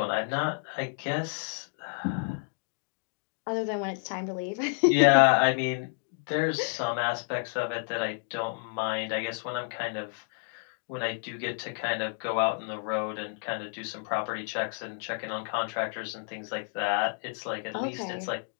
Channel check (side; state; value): right; silent; 58 dB below the other